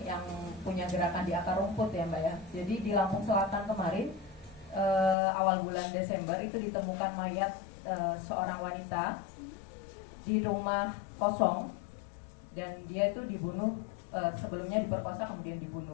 yang punya gerakan di akar rumput ya Mbak ya. Jadi di Lampung Selatan kemarin awal bulan Desember itu ditemukan mayat seorang wanita di rumah kosong dan dia itu dibunuh, sebelumnya diperkosa kemudian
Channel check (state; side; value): drops out; right; at 5.2 s